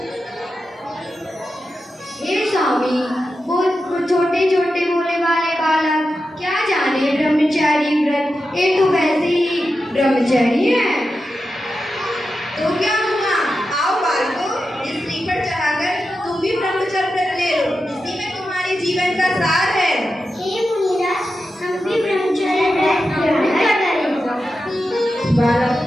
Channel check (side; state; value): both; normal; correlation 0.90